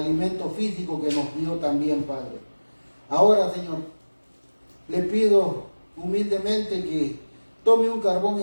físico que nos dio también, Padre. Ahora, Señor, le pido humildemente que tome un carbón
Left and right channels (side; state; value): both; inverted; correlation -1.00